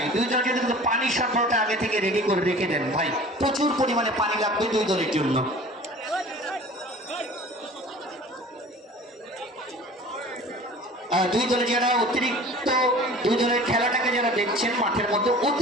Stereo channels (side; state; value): both; normal; correlation 0.43